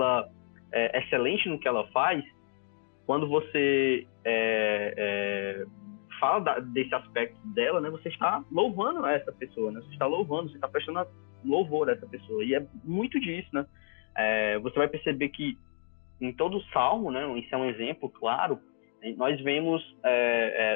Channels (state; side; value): silent; right; digital silence